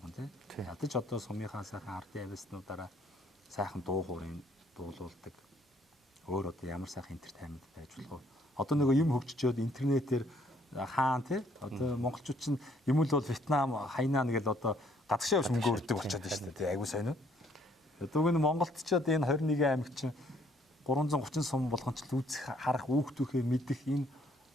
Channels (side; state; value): both; normal; correlation 0.65